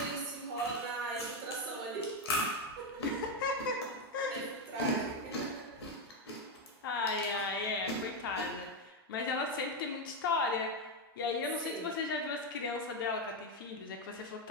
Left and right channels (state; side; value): normal; both; correlation 0.06